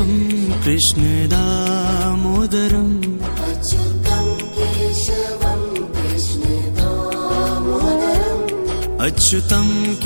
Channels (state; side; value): inverted; both; correlation -1.00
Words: कृष्ण दामोदरम् अच्युतं केशवं कृष्ण दामोदरम् अच्युतं